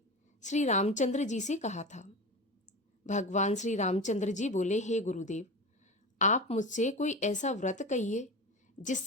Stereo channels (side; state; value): both; normal; correlation 0.27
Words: श्री रामचंद्र जी से कहा था। भगवान श्री रामचंद्र जी बोले, हे गुरुदेव, आप मुझसे कोई ऐसा व्रत कहिए